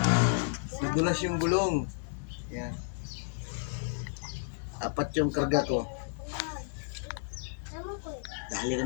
Nadulas yung gulong. Yan. Apat yung karga ko. Dali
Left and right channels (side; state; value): right; silent; digital silence